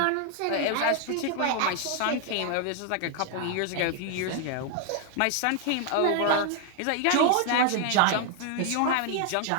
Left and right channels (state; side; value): different; both; correlation 0.00